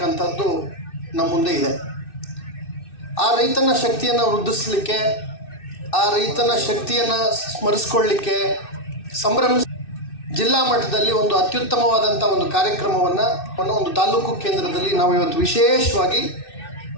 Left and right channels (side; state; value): right; late; 2.6 ms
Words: ನಮ್ಮ ಮುಂದೆ ಇದೆ. ಆ ರೈತನ ಶಕ್ತಿಯನ್ನು ವೃದ್ಧಿಸಲಿಕ್ಕೆ, ಆ ರೈತನ ಶಕ್ತಿಯನ್ನು ಸ್ಮರಿಸ್ಕೊಳ್ಳಿಕ್ಕೆ ಜಿಲ್ಲಾ ಮಟ್ಟದಲ್ಲಿ ಒಂದು ಅತ್ಯುತ್ತಮವಾದಂಥ ಒಂದು ಕಾರ್ಯಕ್ರಮವನ್ನು ಒಂದು ತಾಲೂಕು ಕೇಂದ್ರದಲ್ಲಿ ನಾವು ಇವತ್ತು ವಿಶೇಷವಾಗಿ